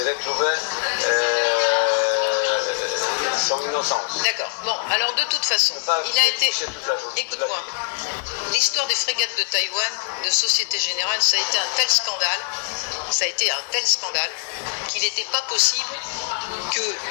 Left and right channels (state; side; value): silent; right; digital silence